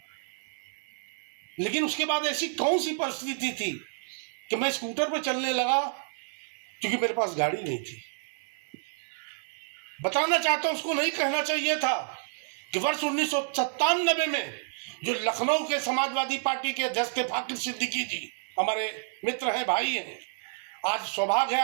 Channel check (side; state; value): left; silent; 58 dB below the other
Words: लेकिन उसके बाद ऐसी कौन सी परिस्थिति थी कि मैं स्कूटर पर चलने लगा, क्योंकि मेरे पास गाड़ी नहीं थी। बताना चाहता हूं, उसको नहीं कहना चाहिए था कि वर्ष 1997 में जो लखनऊ के समाजवादी पार्टी के अध्यक्ष थे फाकिर सिद्दीकी जी, हमारे मित्र हैं, भाई हैं, आज सौभाग्य है